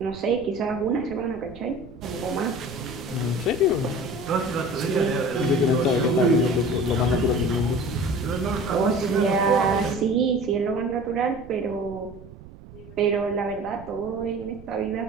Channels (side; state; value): right; noise; rumble, 18 dB below the sound